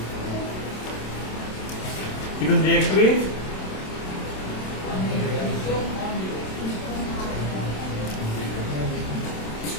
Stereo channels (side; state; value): right; late; 27 ms